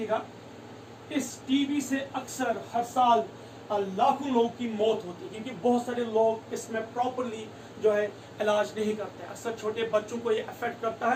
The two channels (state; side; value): identical; both; correlation 1.00